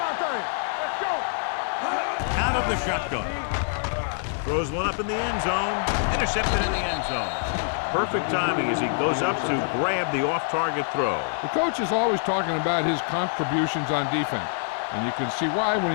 thing. Let's go. Out of the shotgun. Throws one up in the end zone. Intercepted in the end zone. Perfect timing as he goes up to grab the off-target throw. The coach is always talking about his contributions on defense, and you can see why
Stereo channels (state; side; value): silent; right; digital silence